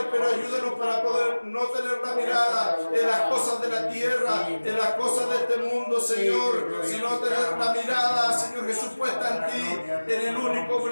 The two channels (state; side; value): inverted; both; correlation -1.00